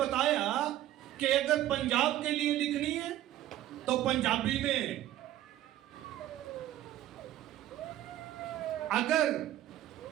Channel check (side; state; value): left; quieter; 13.4 dB